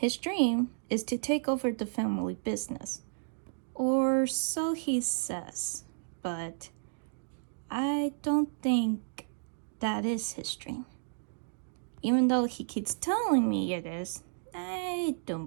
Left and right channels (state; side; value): silent; left; digital silence